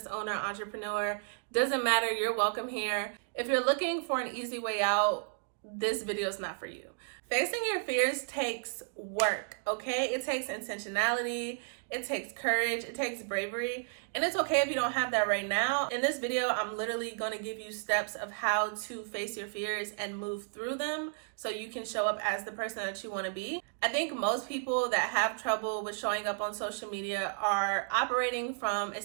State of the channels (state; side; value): silent; left; digital silence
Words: owner, entrepreneur, doesn't matter, you're welcome here. If you're looking for an easy way out, this video is not for you. Facing your fears takes work, okay? It takes intentionality, it takes courage, it takes bravery, and it's okay if you don't have that right now. In this video, I'm literally going to give you steps of how to face your fears and move through them so you can show up as the person that you want to be. I think most people that have trouble with showing up on social media are operating from a